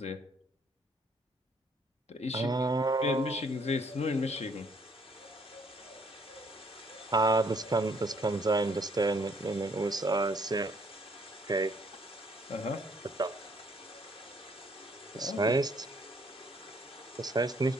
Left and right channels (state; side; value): normal; both; correlation 0.65